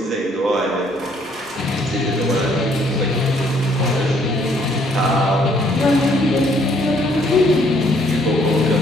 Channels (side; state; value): both; normal; correlation 0.65